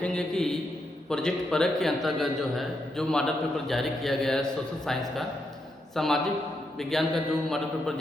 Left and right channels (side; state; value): both; normal; correlation 0.82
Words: कि प्रोजेक्ट परख के अंतर्गत जो है जो मॉडल पेपर जारी किया गया है सोशल साइंस का, सामाजिक विज्ञान का जो मॉडल पेपर